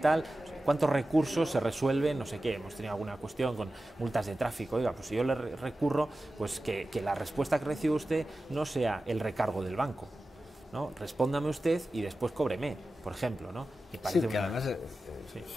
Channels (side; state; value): both; normal; correlation 0.94